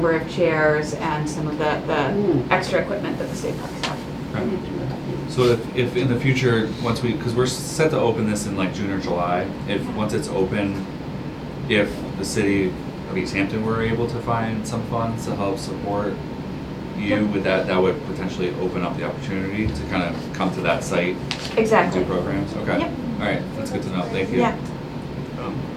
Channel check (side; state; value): both; identical; correlation 1.00